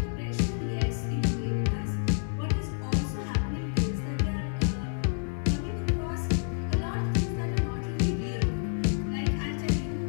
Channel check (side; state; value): right; silent; digital silence